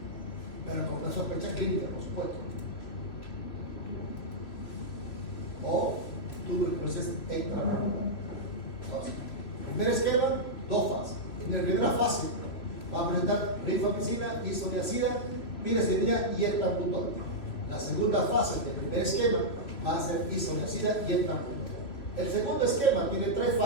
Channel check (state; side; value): late; right; 3.1 ms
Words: pero con una sospecha clínica, por supuesto. O tuberculosis extramolecular. Entonces, primer esquema, 2 fases. En la primera fase va a presentar rifampicina, isoniazida, piracetamina y etambutol. La segunda fase del primer esquema va a ser isoniazida y etambutol. El segundo esquema tiene 3